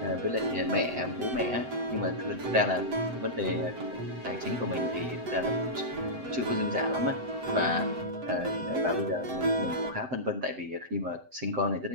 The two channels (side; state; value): left; late; 7.8 ms